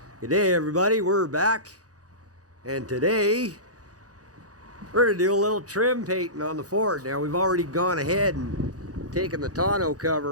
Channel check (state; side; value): late; left; 0.67 ms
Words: Good day, everybody. We're back, and today we're gonna do a little trim painting on the Ford. Now we've already gone ahead and taken the tonneau